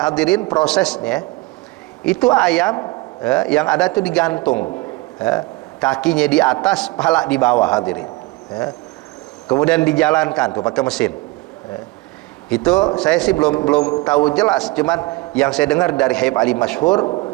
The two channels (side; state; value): left; quieter; 21.8 dB